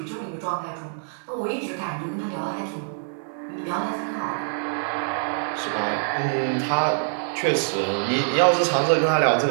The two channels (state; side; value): silent; left; 60 dB below the other